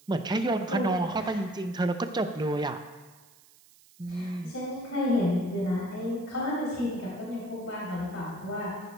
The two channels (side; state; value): right; noise; hiss, 26 dB below the sound